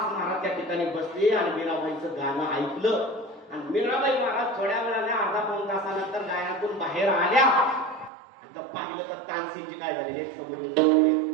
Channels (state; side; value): drops out; left; at 8.1 s